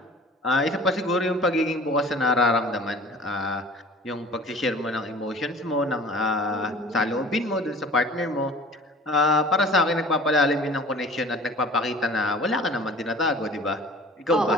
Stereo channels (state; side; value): normal; both; correlation 0.44